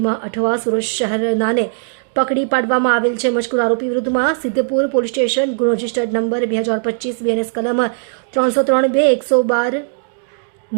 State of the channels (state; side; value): silent; left; digital silence